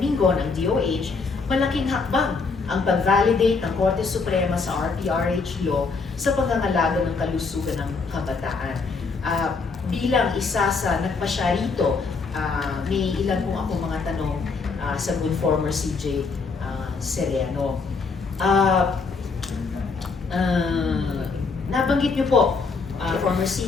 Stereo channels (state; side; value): quieter; right; 4.6 dB